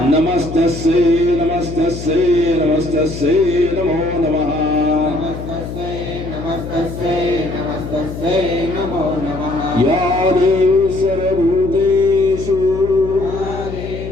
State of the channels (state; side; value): noise; left; hum, 9 dB below the sound